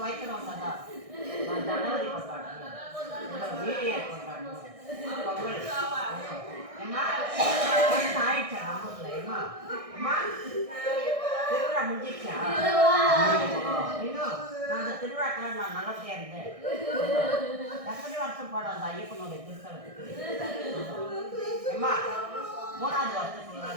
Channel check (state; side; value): late; left; 1.6 ms